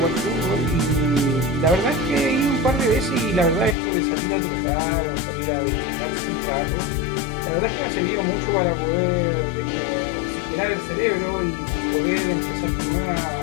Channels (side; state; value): right; drops out; at 3.8 s